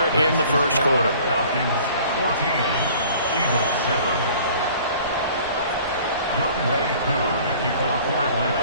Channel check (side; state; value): both; inverted; correlation -0.50